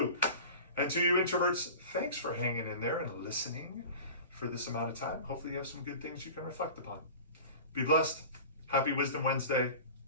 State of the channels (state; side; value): inverted; both; correlation -0.37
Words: And to you introverts, thanks for hanging in there and listening for this amount of time. Hopefully you have some good things you can reflect upon. Be blessed. Happy Wisdom Wednesday